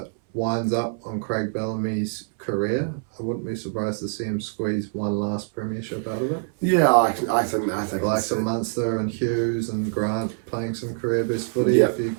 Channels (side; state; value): left; silent; 60 dB below the other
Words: on Craig Bellamy's career, I wouldn't be surprised to see him squeeze one last premiership out of it. Yeah, I think like some Munster and Hughes and Grant playing some career best footy. Yep.